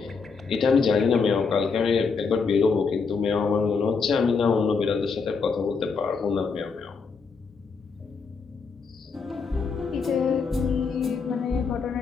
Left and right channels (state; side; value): quieter; right; 5.1 dB